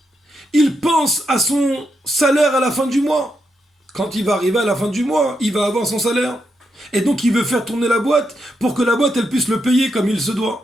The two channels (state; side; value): normal; both; correlation 0.83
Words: il pense à son salaire à la fin du mois. Quand il va arriver à la fin du mois, il va avoir son salaire. Et donc il veut faire tourner la boîte pour que la boîte elle puisse le payer comme il se